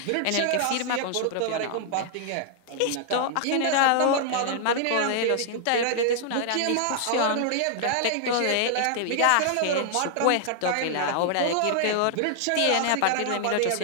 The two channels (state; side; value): different; both; correlation -0.01